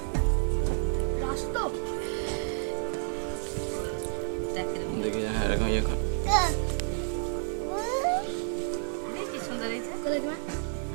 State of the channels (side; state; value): left; silent; 58 dB below the other